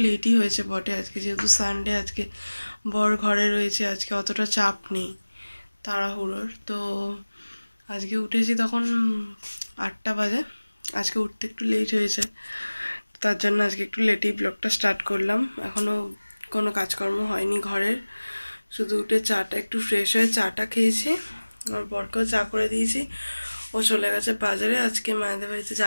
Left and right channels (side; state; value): both; inverted; correlation -1.00